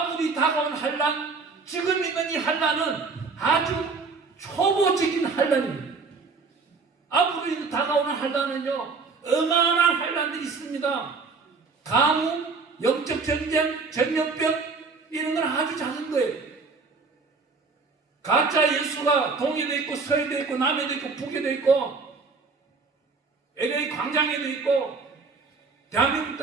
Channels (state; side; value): quieter; left; 4.5 dB